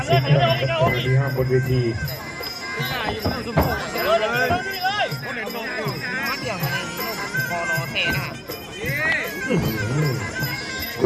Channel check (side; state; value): both; identical; correlation 1.00